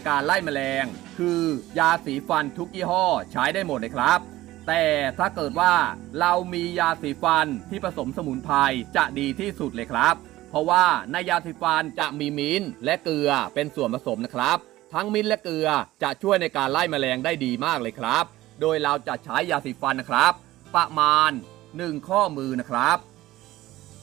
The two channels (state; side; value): quieter; left; 16.4 dB